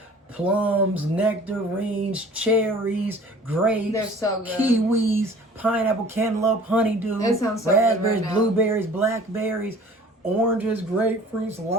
plums, nectarines, cherries, grapes, They're so good. kiwis, pineapple, cantaloupe, honeydew, It sounds so good raspberries, right now. blueberries, blackberries, oranges, grapefruits,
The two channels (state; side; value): normal; both; correlation 0.47